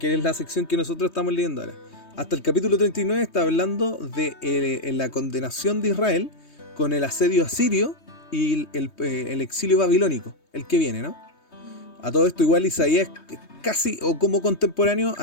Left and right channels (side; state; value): right; late; 3.2 ms